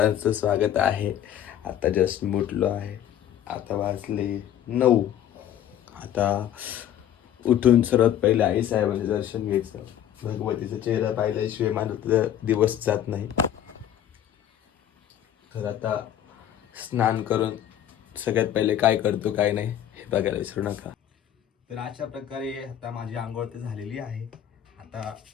स्वागत आहे. आता जस्ट उठलो आहे. आता वाजले 9. आता उठून सर्वात पहिले आई साहेबांचे दर्शन घ्यायचं. भगवतीचा चेहरा पाहिल्याशिवाय माझा दिवस जात नाही. तर आता स्नान करून सगळ्यात पहिले काय करतो काय नाही हे बघायला विसरू नका. तर अशा प्रकारे आता माझी आंघोळ तर झालेली आहे. आता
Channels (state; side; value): quieter; right; 10.8 dB